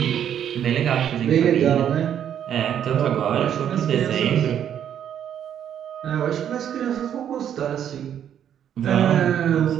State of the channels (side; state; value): left; quieter; 9.5 dB